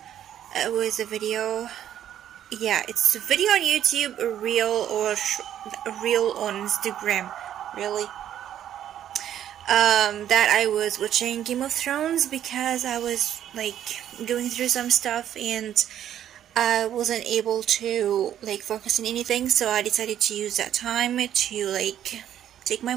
It was a video. Yeah, it's a video on YouTube, a reel or a reel on Instagram. Really. That I was watching Game of Thrones because I was going through some stuff and I wasn't able to focus on anything, so I decided to use that time to take my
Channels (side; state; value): left; quieter; 10.7 dB